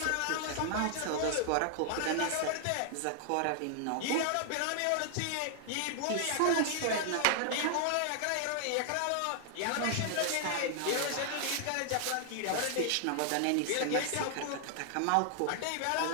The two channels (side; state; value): both; different; correlation 0.00